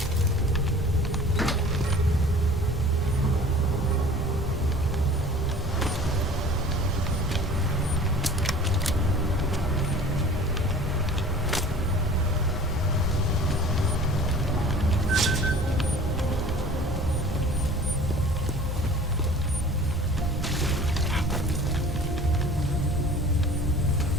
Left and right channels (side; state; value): both; normal; correlation 0.46